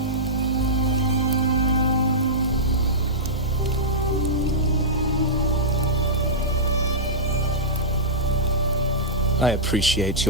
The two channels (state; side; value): normal; both; correlation -0.15